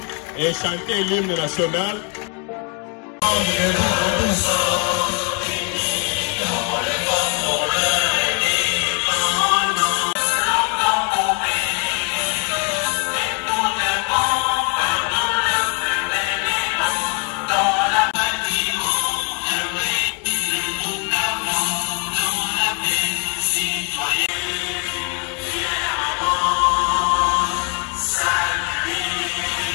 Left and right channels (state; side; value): quieter; right; 36.9 dB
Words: et chanter l'hymne national.